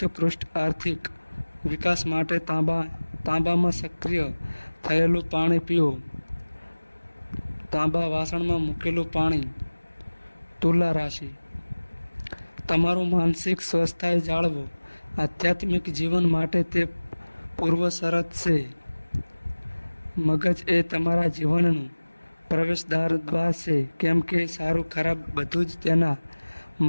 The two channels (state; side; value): inverted; both; correlation -1.00